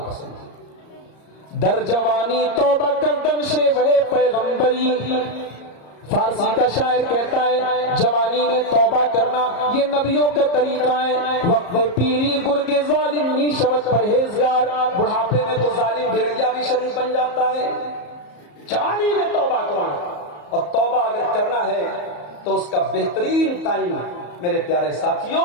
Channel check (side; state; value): right; late; 34 ms